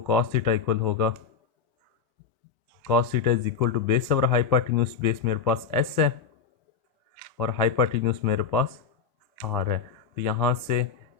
कॉस थीटा इक्वल होगा cos theta is equal to base और हाइपोटेन्यूज, बेस मेरे पास एस है और हाइपोटेन्यूज मेरे पास आर है। तो यहाँ से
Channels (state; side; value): quieter; right; 6.1 dB